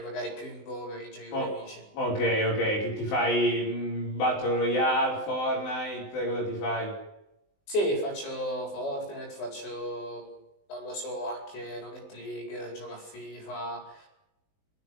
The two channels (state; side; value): late; right; 19 ms